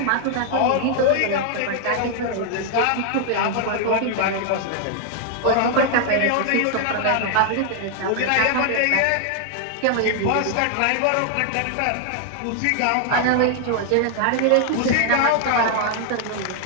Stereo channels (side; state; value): both; different; correlation 0.00